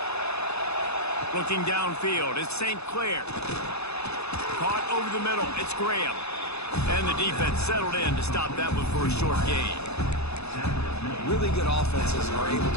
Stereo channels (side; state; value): right; late; 0.79 ms